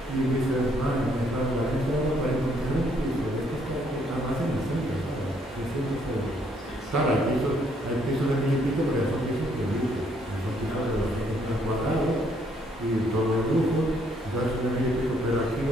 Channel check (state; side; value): normal; both; correlation 0.69